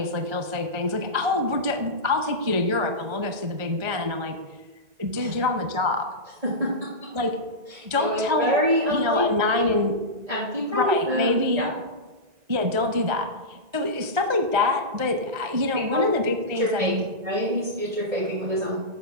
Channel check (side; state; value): left; late; 1.9 ms